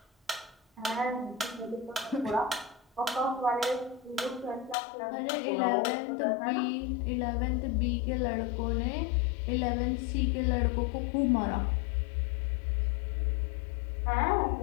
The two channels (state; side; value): drops out; right; at 4.8 s